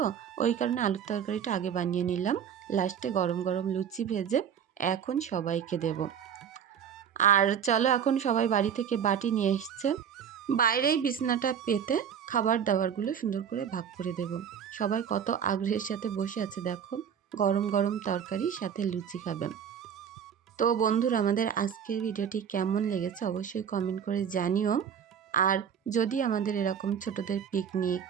ওই কারণে আলুর তরকারিটা আগে বানিয়ে নিলাম। লাস্টে গরম গরম লুচি ভেজে এখন সবাইকে দেব। আর চলো, এখন সবাই বাড়ি থেকে বাটি নিয়ে এসছে, বাইরেই বিছনাটা পেতে খাবার দাবারগুলো সুন্দর করে ভাগ করে দেব। সবাই কত আগ্রহের সাথে বসে আছে দেখো, গরম গরম তরকারি সাথে লুচি খাবেন। তো বন্ধুরা, আমাদের আজকের ভিডিওটি কেমন লেগেছে অবশ্যই কমেন্ট করে জানিও। আর যদি আমাদের এরকম ছোটদের পিকনিক,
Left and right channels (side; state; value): left; quieter; 8.1 dB